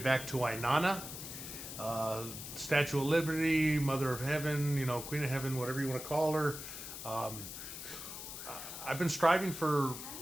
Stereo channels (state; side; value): noise; left; hiss, 9 dB below the sound